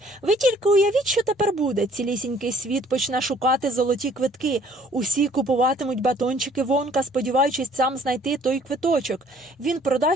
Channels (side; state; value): both; normal; correlation 0.58